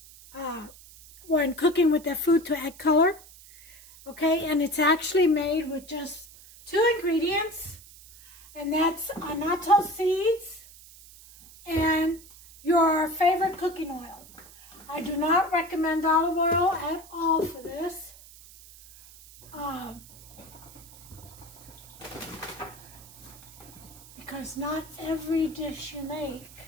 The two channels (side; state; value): right; noise; hiss, 20 dB below the sound